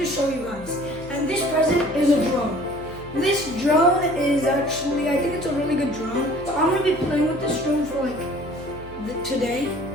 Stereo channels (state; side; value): noise; left; hum, 17 dB below the sound